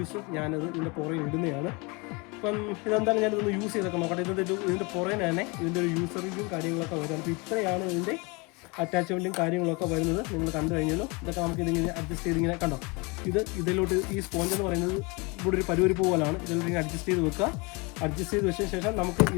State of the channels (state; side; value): quieter; right; 28.5 dB